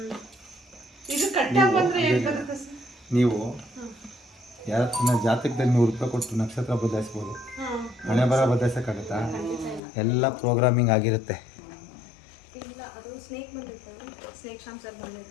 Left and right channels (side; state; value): right; drops out; at 9.8 s